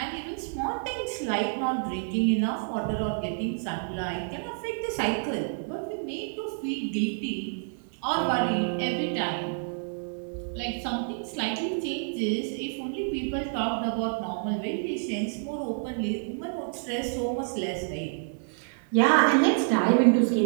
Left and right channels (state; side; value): silent; left; digital silence